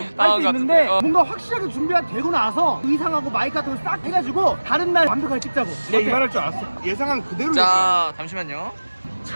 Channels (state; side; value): inverted; both; correlation -1.00